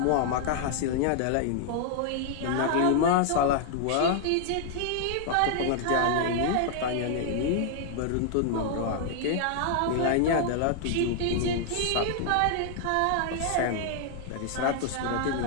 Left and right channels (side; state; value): both; different; correlation 0.00